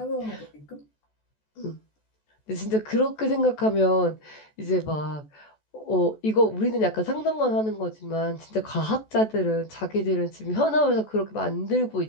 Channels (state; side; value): late; right; 14 ms